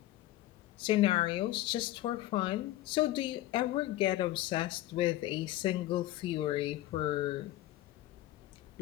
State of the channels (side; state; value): right; quieter; 15.6 dB